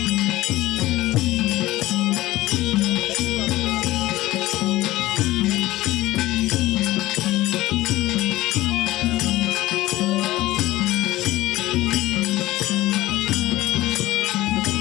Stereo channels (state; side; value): quieter; right; 17.2 dB